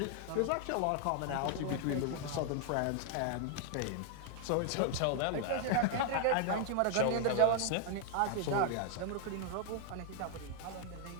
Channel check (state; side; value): different; both; correlation 0.00